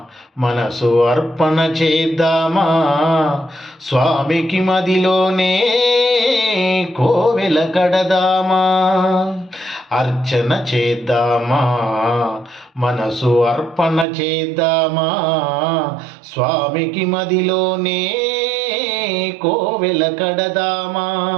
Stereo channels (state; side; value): drops out; left; at 14.1 s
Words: మనసు అర్పణ చేద్దామా, స్వామికి మదిలోనే కోవెల కడదామా. అర్చన చేద్దామా, మనసు అర్పణ చేద్దామా, స్వామికి మదిలోనే కోవెల కడదామా.